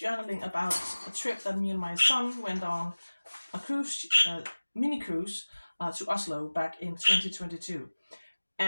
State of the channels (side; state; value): both; inverted; correlation -1.00